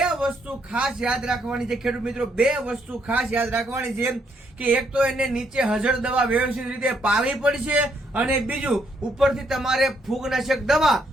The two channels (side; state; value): both; normal; correlation 0.73